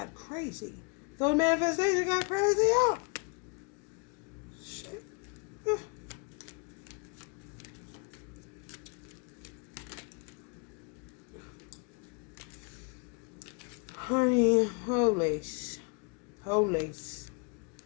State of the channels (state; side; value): quieter; right; 35.6 dB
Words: crazy. So the manifestation got crazy out. Shit. Honey, holy.